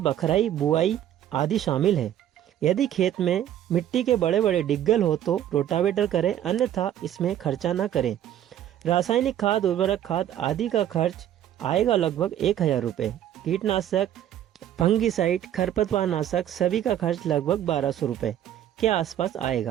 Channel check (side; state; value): left; quieter; 11.2 dB